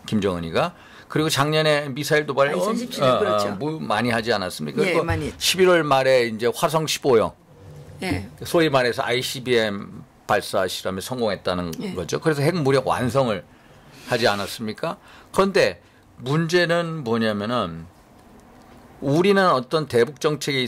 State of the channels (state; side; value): identical; both; correlation 1.00